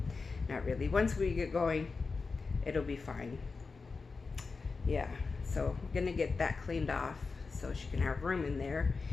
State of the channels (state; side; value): quieter; right; 4.4 dB